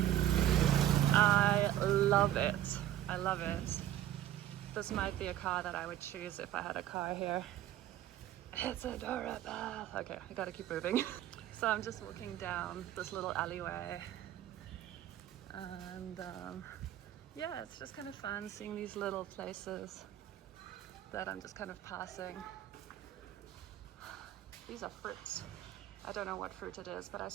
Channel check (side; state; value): left; quieter; 12.5 dB